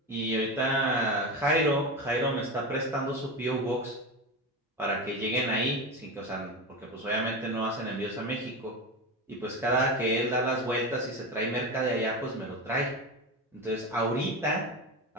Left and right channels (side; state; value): both; normal; correlation 0.21